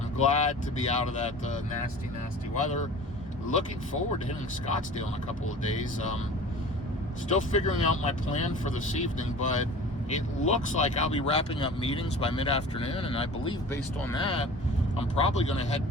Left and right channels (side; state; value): both; normal; correlation 0.40